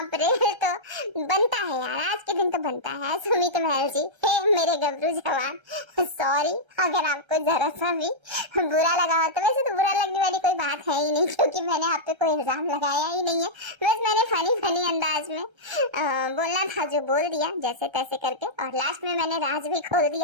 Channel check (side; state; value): left; late; 1.3 ms